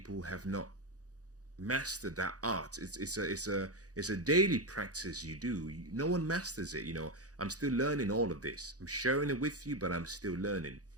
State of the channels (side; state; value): left; late; 0.67 ms